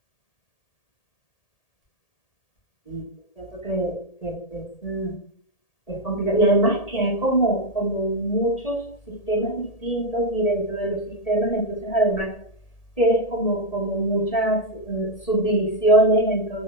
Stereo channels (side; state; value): right; late; 1.8 ms